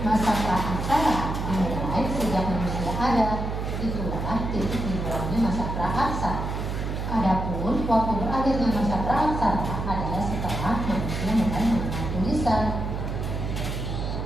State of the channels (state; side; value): noise; right; hum, 3 dB below the sound